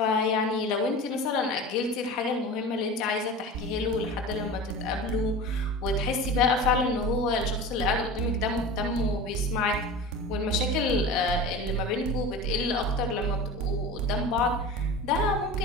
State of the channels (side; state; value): both; normal; correlation 0.33